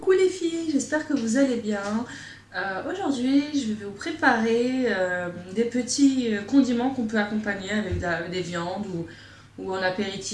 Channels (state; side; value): identical; both; correlation 1.00